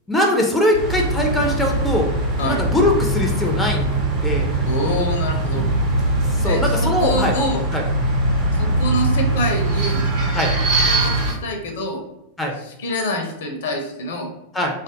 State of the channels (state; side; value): normal; both; correlation -0.16